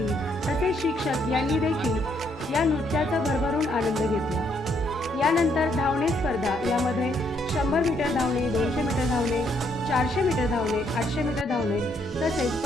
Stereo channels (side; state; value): both; normal; correlation 0.72